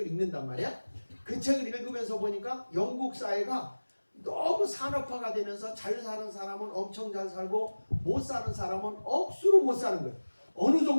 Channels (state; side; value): inverted; both; correlation -1.00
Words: 읽는단 말이야. 그 책을 읽으면서 보니까 영국 사회가 너무 산업화가 되면서 잘 사는 사람은 엄청 잘 살고 못 사는 사람은 억수로 못 사는 거예요. 어느